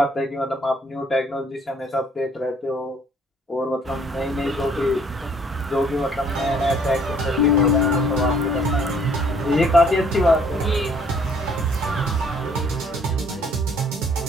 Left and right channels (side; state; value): both; normal; correlation 0.61